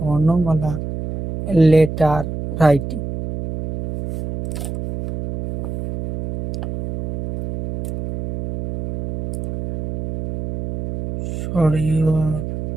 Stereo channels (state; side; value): noise; right; hum, 7 dB below the sound